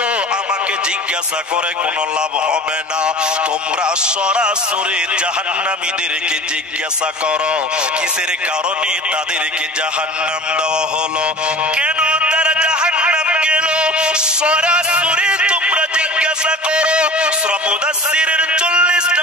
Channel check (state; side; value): normal; both; correlation 0.40